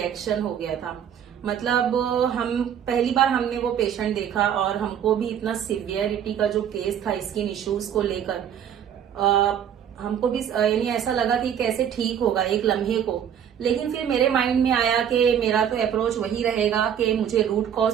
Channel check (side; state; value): left; quieter; 9.0 dB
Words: हो गया था। मतलब हम पहली बार हमने वो पेशेंट देखा और हमको भी इतना सिवियरिटी का जो केस था स्किन इश्यूज को लेकर, हमको भी यानी ऐसा लगा कि कैसे ठीक होगा एक लम्हे को। लेकिन फिर मेरे माइंड में आया कि मेरा तो अप्रोच वही रहेगा कि मुझे रूट कॉज